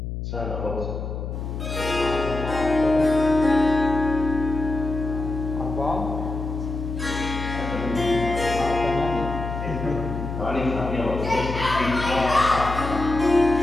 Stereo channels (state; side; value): noise; left; hum, 5 dB below the sound